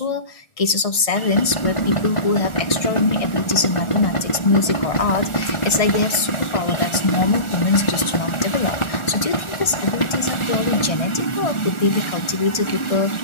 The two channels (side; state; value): right; late; 1.6 ms